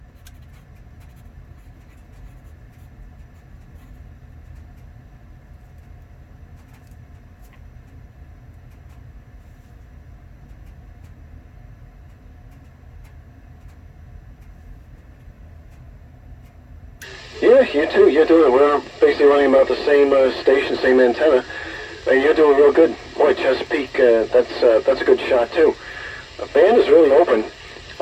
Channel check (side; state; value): both; identical; correlation 1.00